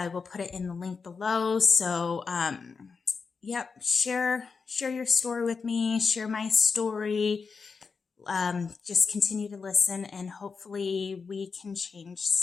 will put it in the link below. So, share your story with me, share my story. Just continue to listen, and hopefully we can change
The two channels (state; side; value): quieter; right; 5.1 dB